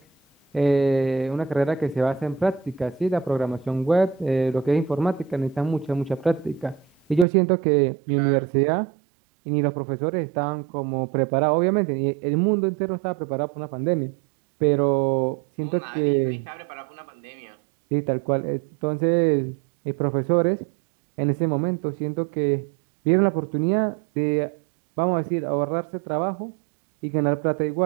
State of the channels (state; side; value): drops out; left; at 7.2 s